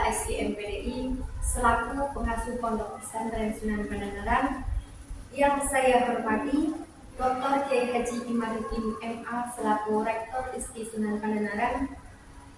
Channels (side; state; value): both; identical; correlation 1.00